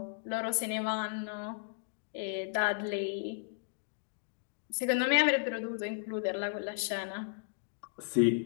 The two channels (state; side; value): silent; right; digital silence